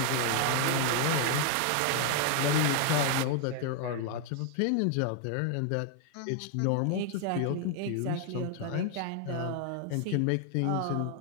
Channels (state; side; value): different; both; correlation 0.00